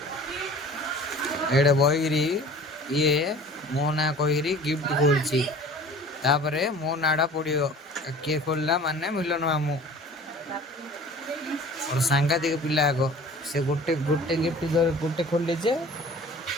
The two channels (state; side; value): normal; both; correlation 0.45